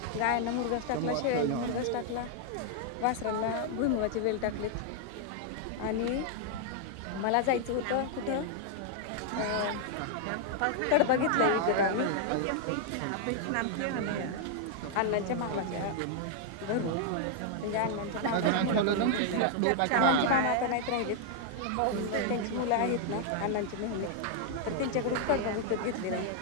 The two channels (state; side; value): different; both; correlation 0.00